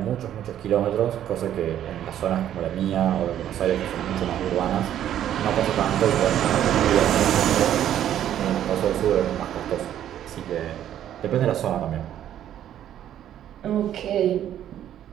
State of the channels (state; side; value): quieter; left; 11.0 dB